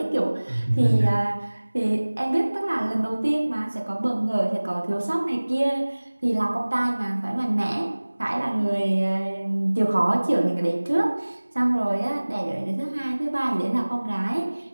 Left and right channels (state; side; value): inverted; both; correlation -1.00